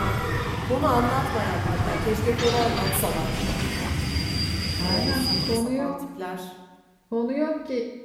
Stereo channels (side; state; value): both; identical; correlation 1.00